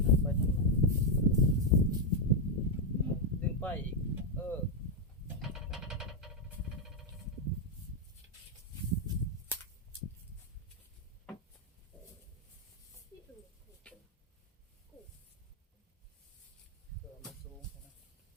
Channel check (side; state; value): both; normal; correlation 0.02